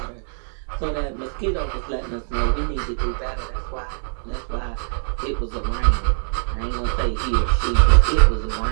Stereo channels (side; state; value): left; silent; digital silence